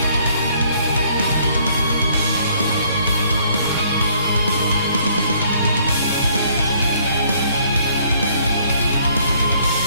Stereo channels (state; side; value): inverted; both; correlation -0.63